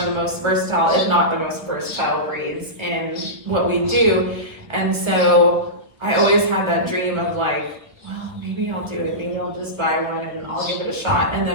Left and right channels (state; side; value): late; left; 1.4 ms